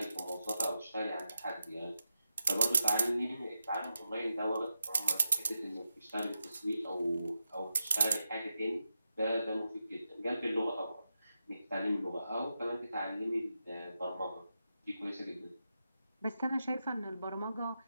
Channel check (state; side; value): inverted; both; correlation -0.88